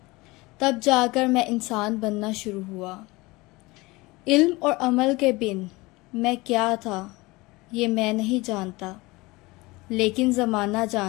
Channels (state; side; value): quieter; right; 22.4 dB